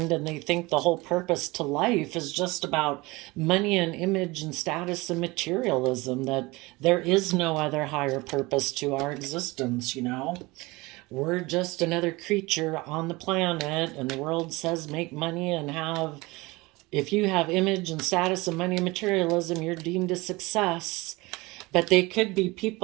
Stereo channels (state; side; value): quieter; left; 22.6 dB